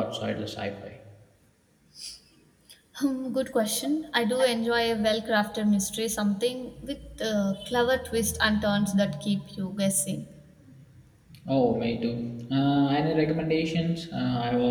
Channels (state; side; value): identical; both; correlation 1.00